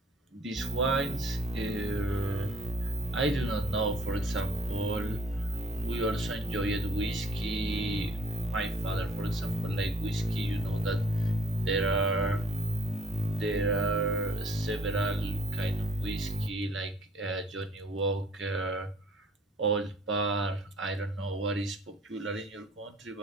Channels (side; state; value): both; normal; correlation 0.58